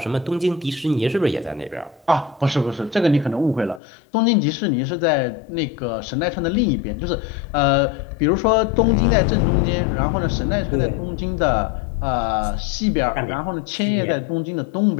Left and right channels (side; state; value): right; drops out; at 3.8 s